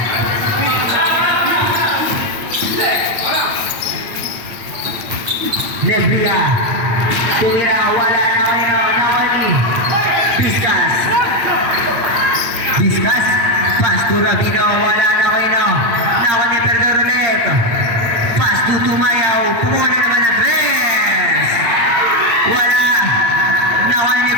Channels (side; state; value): left; late; 9.1 ms